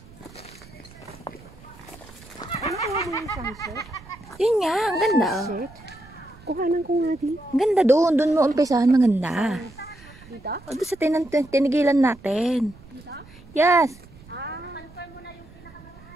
Ano ko yung sunset? Yun nga, ang ganda. Oh. Shit. Kuhanan ko nga di. Ang ganda doon. Doon mo umpisahan. Maganda. Dito? O, doon sa tinigilan natin. Yes.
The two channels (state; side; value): noise; right; rumble, 22 dB below the sound